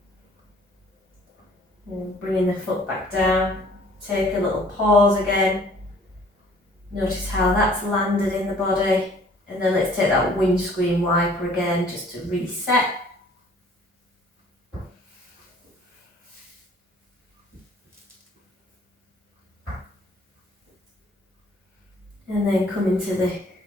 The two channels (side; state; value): both; normal; correlation 0.55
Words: And bringing the foot back down. Take a little pause again. Notice how that's landed in the body. And then let's take that windscreen wiper again just to reset. And then come into the